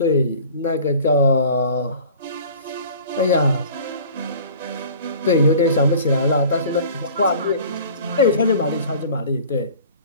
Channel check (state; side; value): inverted; both; correlation -0.45